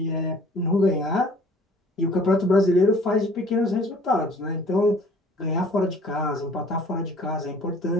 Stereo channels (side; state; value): both; normal; correlation 0.53